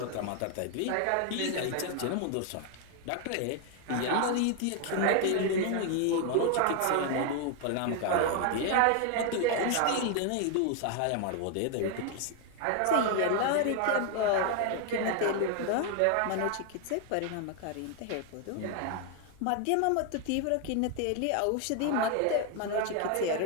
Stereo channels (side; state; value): both; different; correlation 0.00